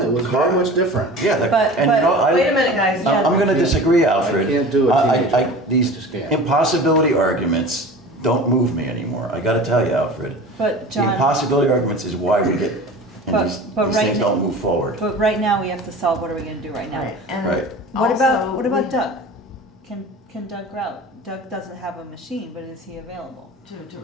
it was very much different. Yeah, But- and you know, I. Wait a minute, guys. I'm gonna disagree, Alfred. I can't do a teenager. I These just can't. impossibility arguments don't move me anymore, I gotta tell you, Alfred. But The John, impossibility arguments is why we get, and But- these but these right things now- don't move forward. but right now we have to solve, what are we gonna do right now? Right, and Right. What about, also what about we- Doug? Can Doug route? Doug doesn't have a machine, but is he available? To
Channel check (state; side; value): normal; both; correlation 0.37